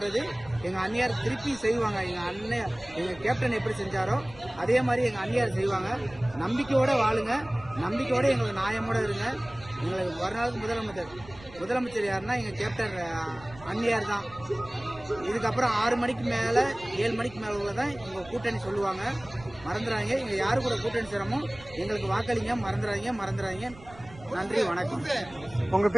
எங்கள் அண்ணியார் திருப்பி செய்வாங்க. எங்கள் கேப்டன் எப்படி செஞ்சாரோ அதே மாதிரி எங்கள் அண்ணியார் செய்வாங்க. நம்பிக்கையோடு வாழுங்க, நம்பிக்கையோடு எங்களுக்கு நியாயமோடு இருங்க. எங்களுக்கு வருநாளுக்கு முதலமைச்சர் யாருன்னா எங்கள் கேப்டன் அண்ணியார் தான். இதுக்கப்புறம் 6 மணிக்கு மேலே 7 மணிக்கு மேலே உள்ளதான் எங்கள் கூட்டணி சொல்லுவாங்க. மறந்துடாங்க. இங்கே யாரு கூட கூட்டணி சேரமோ எங்களுக்கு வாக்களிங்க. மறந்துடாங்க. நன்றி, வணக்கம். உங்க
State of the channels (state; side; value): noise; right; rumble, 20 dB below the sound